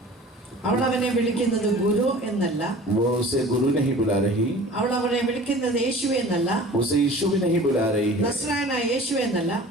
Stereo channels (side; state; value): both; normal; correlation 0.43